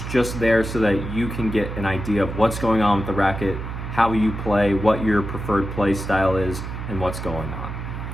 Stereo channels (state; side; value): noise; right; hum, 7 dB below the sound